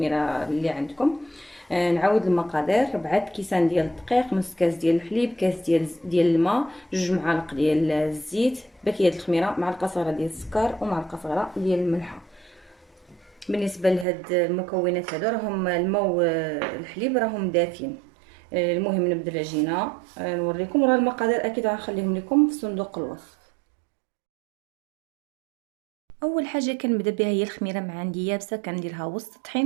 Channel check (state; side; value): drops out; left; at 14.1 s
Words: اللي عندكم. نعاود المقادير: 4 كيسان ديال الدقيق، نص كاس ديال الحليب، كاس ديال الماء، 2 معالق ديال الزيت، باكيه د الخميره، معلقه صغيره ديال السكر، ومعلقه صغيره ديال الملحه. بالنسبه لهاد المكونات هادو، راهم الماء والحليب راهم دافين. المهم نبدا العجينه، نوريكم. راه المقادير اكيد غنخليهم لكم في صندوق الوصف. اول حاجه كنبدا بها هي الخميره. مع عندي يابسه كنديرها وسط